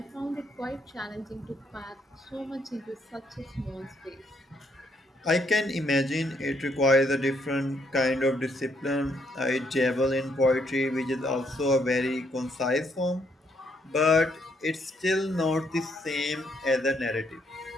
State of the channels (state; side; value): normal; both; correlation 0.73